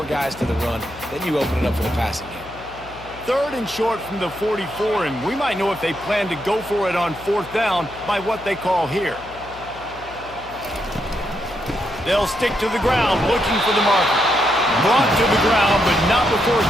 guys to the run. Then you open it up for the passing game. 3rd and short from the 44, and we might know if they plan to go for it on 4th down by what they call here. They'll stick to the ground looking for the marker. Brought to the ground, but not before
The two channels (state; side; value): noise; left; hum, 19 dB below the sound